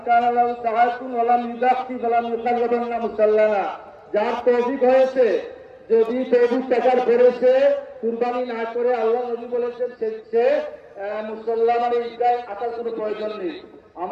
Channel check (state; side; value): identical; both; correlation 1.00